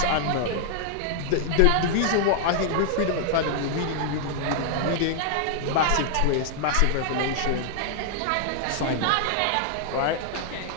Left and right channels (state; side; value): different; both; correlation -0.01